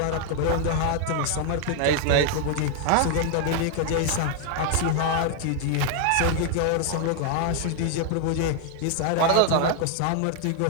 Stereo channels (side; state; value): both; different; correlation 0.00